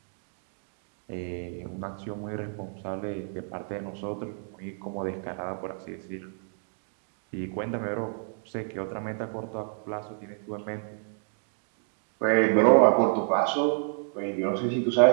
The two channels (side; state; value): left; silent; 58 dB below the other